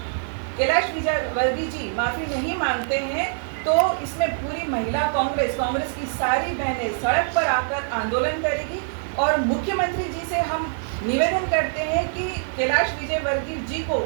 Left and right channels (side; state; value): left; silent; digital silence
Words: कैलाश विजयवर्गीय जी माफी नहीं मांगते हैं तो इसमें पूरी महिला कांग्रेस की सारी बहनें सड़क पर आकर आंदोलन करेगी। और मुख्यमंत्री जी से हम निवेदन करते हैं कि कैलाश विजयवर्गीय जी को